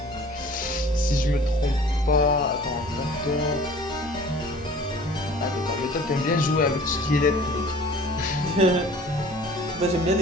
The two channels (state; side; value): normal; both; correlation 0.48